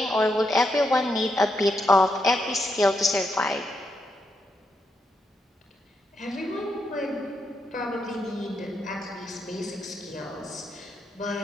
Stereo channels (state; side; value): normal; both; correlation 0.81